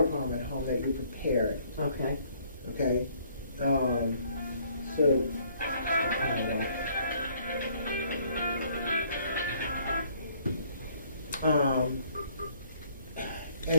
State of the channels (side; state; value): both; inverted; correlation -0.62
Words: problem at home, that you're prepared. Okay. Okay?